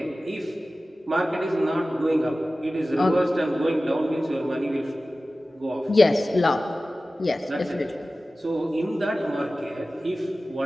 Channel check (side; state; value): both; normal; correlation 0.96